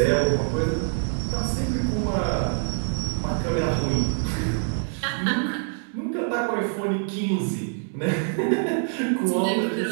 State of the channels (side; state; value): left; silent; 62 dB below the other